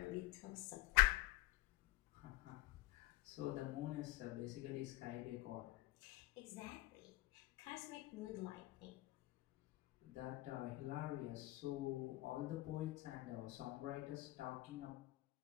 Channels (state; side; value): quieter; right; 18.5 dB